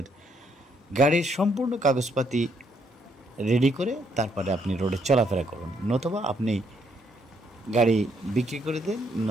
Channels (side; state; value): both; normal; correlation 0.72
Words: গাড়ির সম্পূর্ণ কাগজপাতি রেডি করে তারপরে আপনি রোডে চলাফেরা করুন, নতুবা আপনি গাড়ি বিক্রি করে দেন,